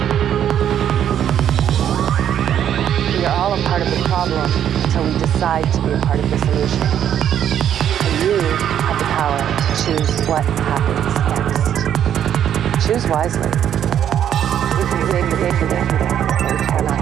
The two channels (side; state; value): left; quieter; 9.8 dB